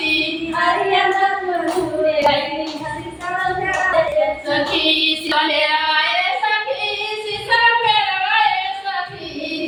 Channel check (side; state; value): both; identical; correlation 1.00